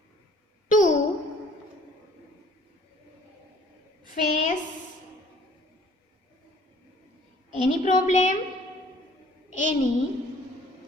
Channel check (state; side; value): normal; both; correlation 0.55